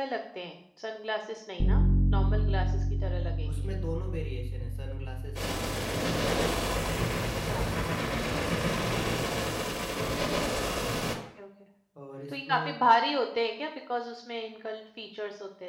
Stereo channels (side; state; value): both; identical; correlation 1.00